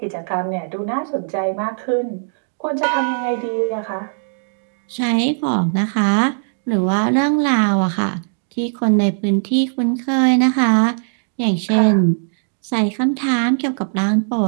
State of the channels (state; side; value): silent; left; 66 dB below the other